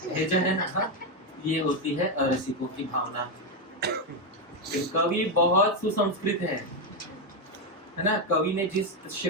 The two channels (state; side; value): normal; both; correlation 0.06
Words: है जो है ना, ये होती है अरसिकों की भावना। कवि बहुत सुसंस्कृत है ना। कवि ने जिस